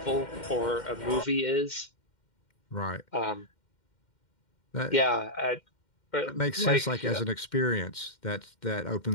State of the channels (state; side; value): late; right; 2.1 ms